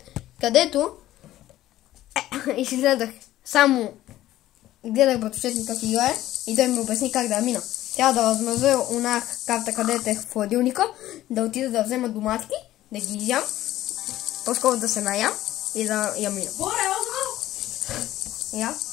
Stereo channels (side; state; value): right; quieter; 14.5 dB